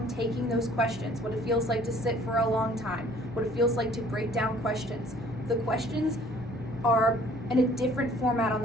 taking those questions, what it feels like to sit for a long time, what it feels like to break down questions. The questions are in a different format on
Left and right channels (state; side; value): normal; both; correlation 0.55